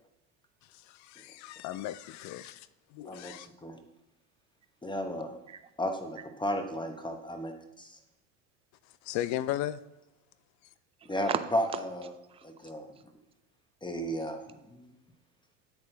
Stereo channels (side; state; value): both; normal; correlation 0.40